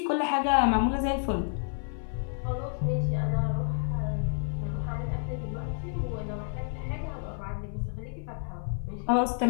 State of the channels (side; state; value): right; silent; 58 dB below the other